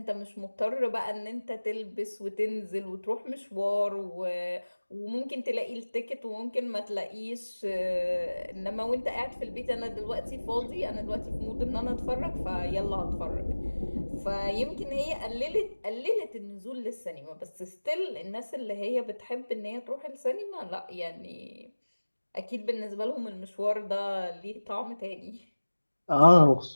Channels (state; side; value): inverted; both; correlation -1.00